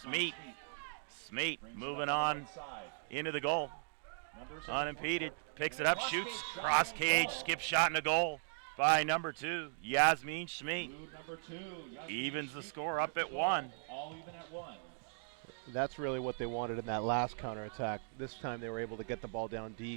Smeet moving on into the goal. Unimpeded. Picks it up, shoots. Cross cage, skip shot in the goal by number 2, Yasmin Smeet. Evens the score up at 1. That's really what they wanted in that last counterattack. This time they were able to get the ball down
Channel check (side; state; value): left; silent; digital silence